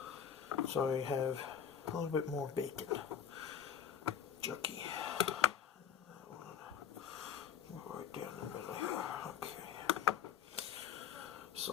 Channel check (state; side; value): quieter; right; 8.5 dB